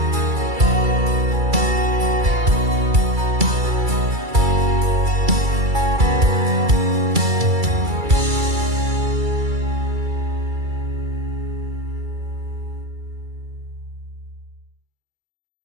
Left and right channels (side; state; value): left; late; 2.3 ms